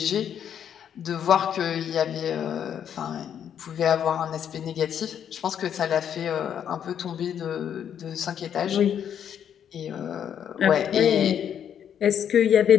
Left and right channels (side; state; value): right; quieter; 9.0 dB